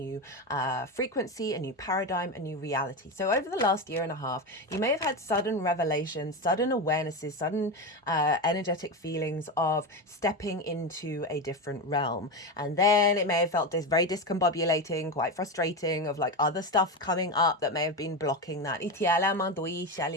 frequency, a new paradigm, a new reality. So over the last year and a half, you may have had sudden revelations, sudden awarenesses, sudden energetic feelings of stepping into a different realm. And then it may have felt very discombobulating, quite frustrating, of like other stuff coming up that may have been blocking that. Because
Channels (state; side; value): normal; both; correlation 0.17